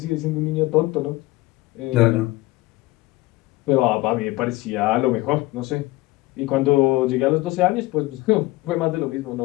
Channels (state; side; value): quieter; right; 19.6 dB